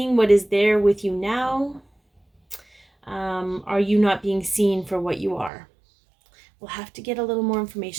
what is there with you now? Are you not being seen for what you are? We'll have to get a little more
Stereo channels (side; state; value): left; drops out; at 5.5 s